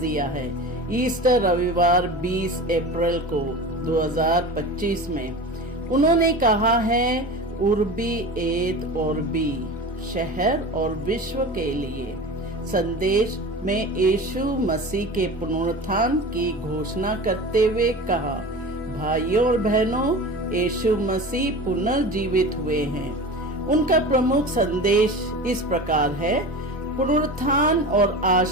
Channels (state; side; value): normal; both; correlation 0.32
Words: है ईस्टर रविवार 20 अप्रैल को 2025 में। उन्होंने कहा है उर्बी एत ऑर्बी, शहर और विश्व के लिए संदेश में यीशु मसीह के पुनरुत्थान की घोषणा करते हुए कहा, भाइयों और बहनों, यीशु मसीह पुनर्जीवित हुए हैं। उनका प्रमुख संदेश इस प्रकार है, पुनरुत्थान और